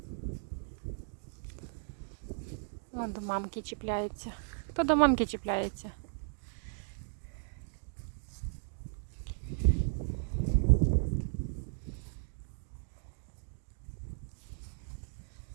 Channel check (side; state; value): left; silent; digital silence